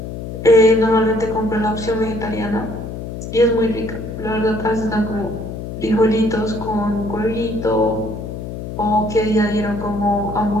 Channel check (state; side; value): noise; left; hum, 8 dB below the sound